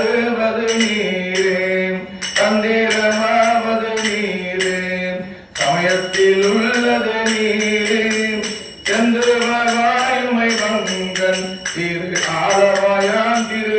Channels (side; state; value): both; identical; correlation 1.00